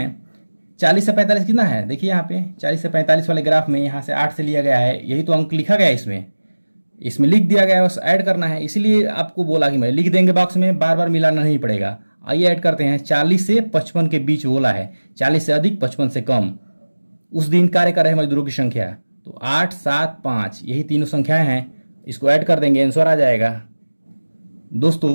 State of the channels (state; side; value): inverted; both; correlation -1.00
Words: 40 से 45 कितना है। देखिए यहाँ पे 40 से 45 वाले ग्राफ में यहाँ से 8 से लिया गया है, यही तो अंक लिखा गया है, इसमें लिख दिया गया है, बस ऐड करना है। इसीलिए आपको बोला कि मैं लिख देंगे बॉक्स में, बार बार मिलाना नहीं पड़ेगा। आइए ऐड करते हैं। 40 से 55 के बीच बोला है, 40 से अधिक 55 से कम, उस दिन कार्य कर रहे मजदूरों की संख्या, तो 8 7 5 यही तीनों संख्याएं हैं, इसको ऐड कर देंगे, आंसर आ जाएगा।